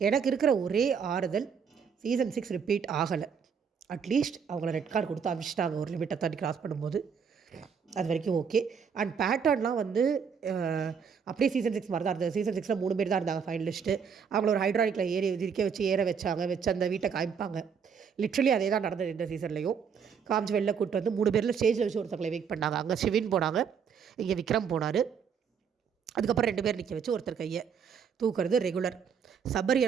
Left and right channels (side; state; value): left; quieter; 6.7 dB